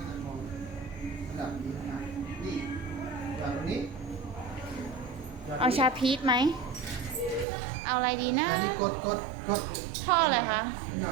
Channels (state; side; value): drops out; left; at 7.5 s